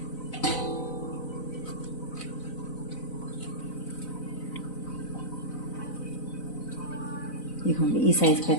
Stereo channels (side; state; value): right; late; 4.0 ms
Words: ఇదిగోండి ఈ సైజుకి